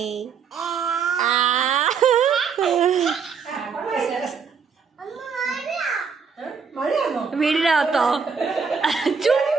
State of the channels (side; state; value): left; quieter; 6.0 dB